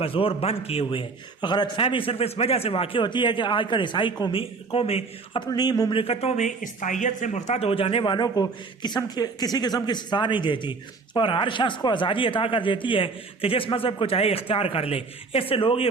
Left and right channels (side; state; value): left; quieter; 4.3 dB